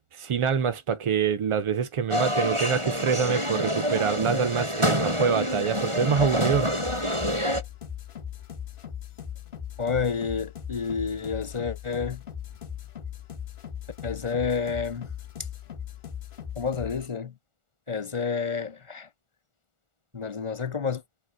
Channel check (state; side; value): late; left; 1.4 ms